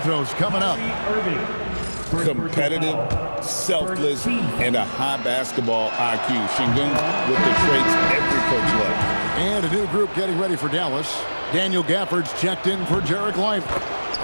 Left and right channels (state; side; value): inverted; both; correlation -1.00